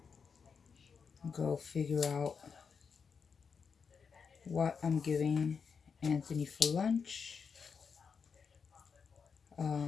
go figure out what I'm giving Anthony for lunch.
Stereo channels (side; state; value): right; quieter; 5.9 dB